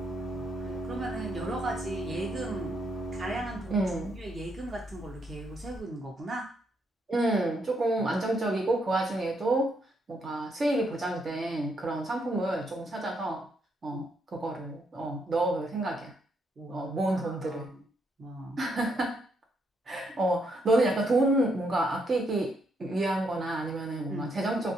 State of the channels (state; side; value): normal; both; correlation 0.76